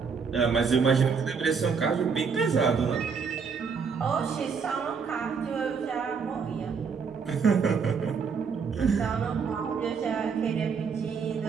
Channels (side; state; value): left; quieter; 5.8 dB